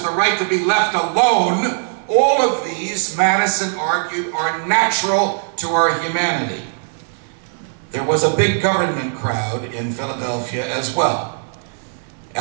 the right to be left alone, all of these, Madison argued, are natural to our humanity. There was a big government crowd in Philadelphia as well.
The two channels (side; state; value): left; silent; 58 dB below the other